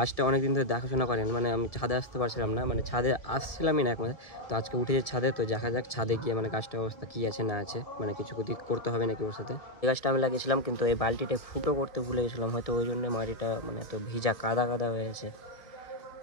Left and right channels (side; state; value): right; late; 1.7 ms